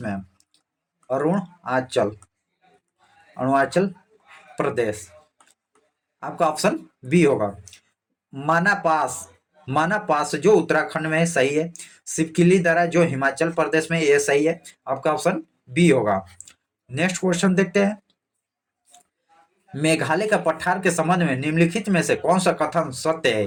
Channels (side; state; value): both; identical; correlation 1.00